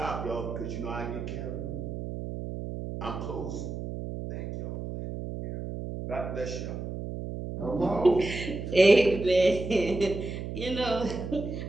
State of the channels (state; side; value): noise; right; hum, 6 dB below the sound